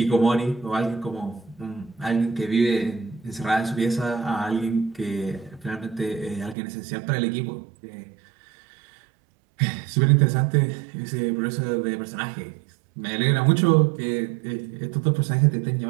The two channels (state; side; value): drops out; left; at 6.6 s